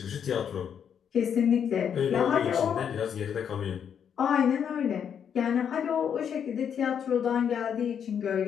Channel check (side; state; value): right; quieter; 8.0 dB